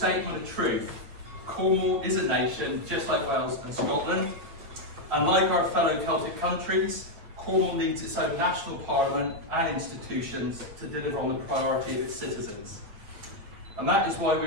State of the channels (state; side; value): late; left; 8.5 ms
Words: of truth. Cornwall is a nation, just like Wales and Scotland. And like our fellow Celtic countries, Cornwall needs its own national parliament and institutions to deliver on the priority of its citizens. And that is why we